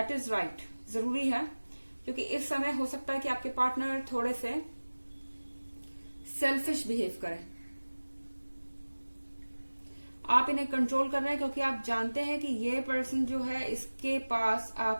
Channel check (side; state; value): both; inverted; correlation -1.00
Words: इज राइट, जरूरी है, क्योंकि इस समय हो सकता है कि आपके पार्टनर थोड़े से सेल्फिश बिहेव करें। आप इन्हें कंट्रोल कर रहे हैं क्योंकि आप जानते हैं कि ये पर्सन जो है इसके पास